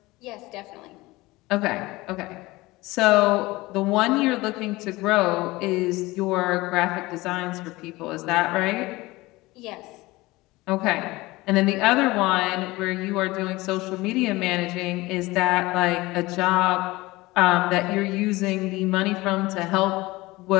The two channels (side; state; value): right; quieter; 20.6 dB